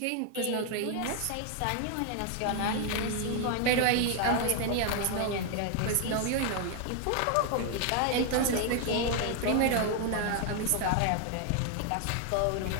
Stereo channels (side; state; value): both; different; correlation 0.00